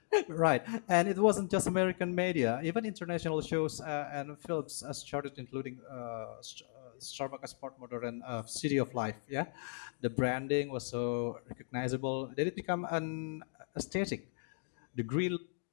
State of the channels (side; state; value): right; silent; digital silence